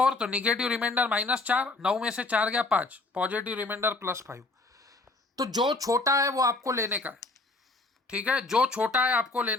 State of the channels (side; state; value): right; quieter; 3.3 dB